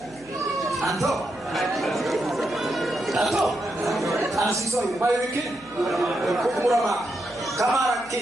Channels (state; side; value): noise; right; hum, 26 dB below the sound